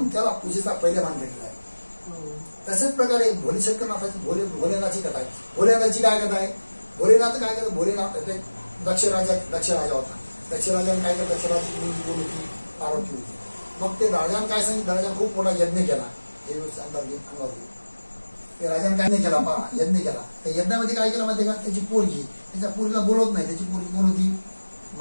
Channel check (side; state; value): both; inverted; correlation -1.00